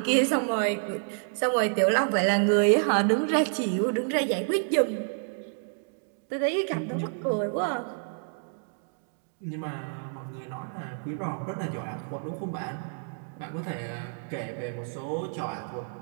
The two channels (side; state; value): left; silent; 59 dB below the other